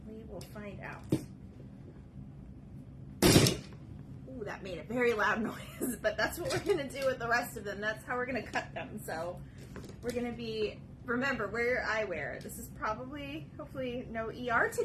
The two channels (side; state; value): both; identical; correlation 1.00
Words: We will find out. Ooh, that made a very loud noise, but that's what we're going to do with the rest of them. That's how we're going to cut them. So, we're going to be, remember, wear your eyewear. This is probably, hopefully, no ER